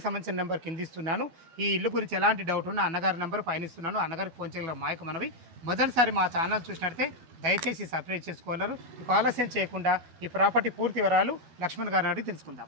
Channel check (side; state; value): left; late; 12 ms